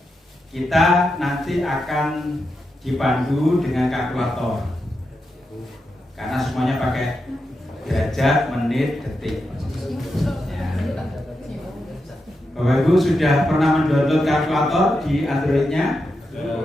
kita nanti akan dipandu dengan kalkulator, karena semuanya pakai derajat, menit, detik. Ya. Bapak Ibu sudah pernah mendownload kalkulator di Android-nya?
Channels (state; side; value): normal; both; correlation 0.87